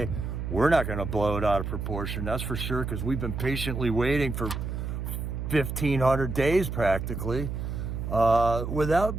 We're not going to blow it out of proportion, that's for sure, because we've been patiently waiting for 1,500 days practically without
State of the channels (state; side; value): noise; right; hum, 4 dB below the sound